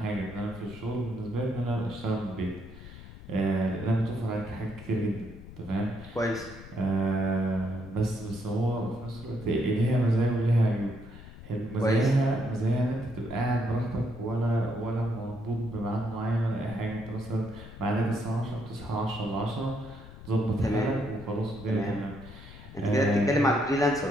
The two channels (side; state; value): left; noise; rumble, 15 dB below the sound